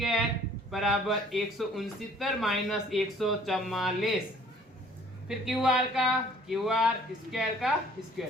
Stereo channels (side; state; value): both; normal; correlation 0.56